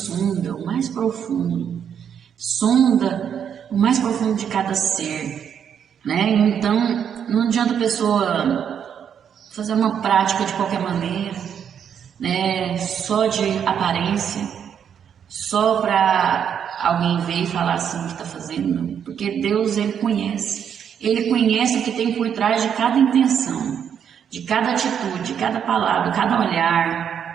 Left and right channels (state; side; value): quieter; left; 8.2 dB